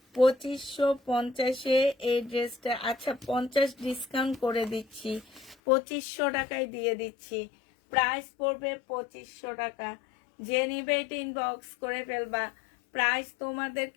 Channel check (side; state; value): right; drops out; at 5.6 s